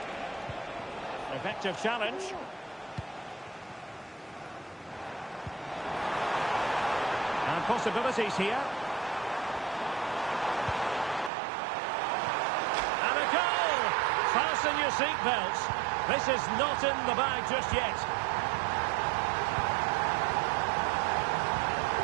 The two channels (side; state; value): left; drops out; at 11.3 s